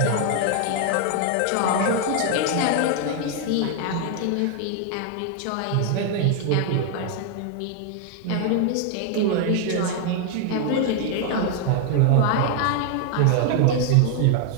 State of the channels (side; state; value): both; different; correlation 0.00